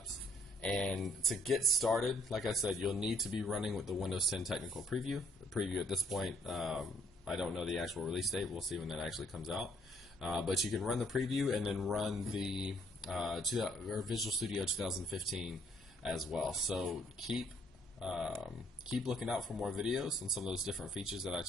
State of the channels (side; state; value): both; normal; correlation 0.65